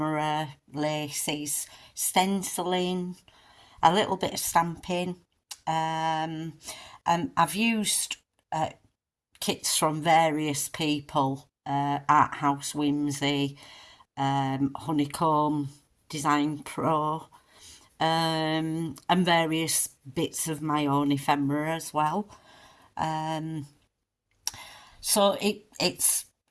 laces, stenciling, a little bit of stamping. I've used kits from various people, Art House Whimsy, Honeycomb Design Pro, and various bits of my own ephemera as well. So it's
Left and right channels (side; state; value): both; identical; correlation 1.00